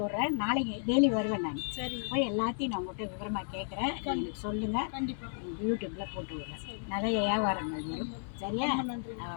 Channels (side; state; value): right; silent; digital silence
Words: விட்றேன். நாளைக்கு டெய்லி வருவேன் நான். சரி, போய் எல்லாத்தையும் நான் உங்கள்கிட்ட விவரமாக கேட்குறேன். எனக்கு சொல்லுங்கள். கண்டிப்பாக யூடியூப்பில் போட்டு விட்றேன். நிறைய வியாபாரங்கள் வரும், சரியா? நன்றி.